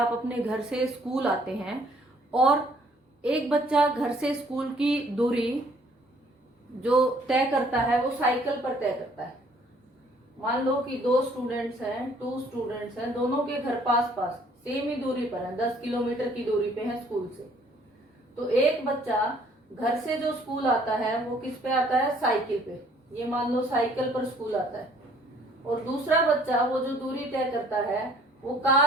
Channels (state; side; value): normal; both; correlation 0.60